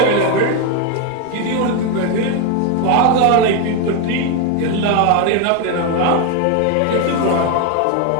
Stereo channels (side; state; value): both; different; correlation 0.02